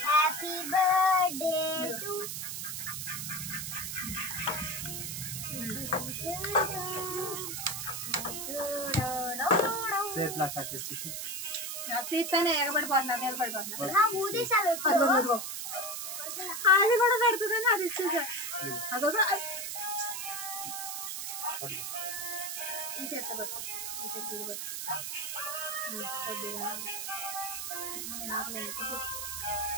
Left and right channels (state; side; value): noise; right; hiss, 4 dB below the sound